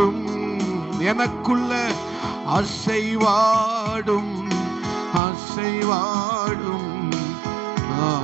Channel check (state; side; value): drops out; left; at 5.2 s